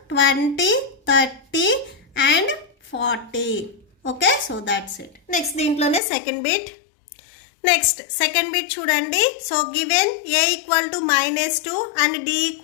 20, 30 and 40. Okay, so that's it. Next దీంట్లోనే second bit. Next second bit చూడండి. So given A equal to -2 and D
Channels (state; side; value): drops out; right; at 6.0 s